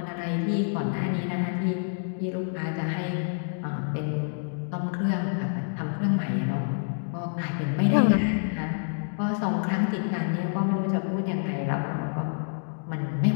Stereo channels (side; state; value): right; silent; digital silence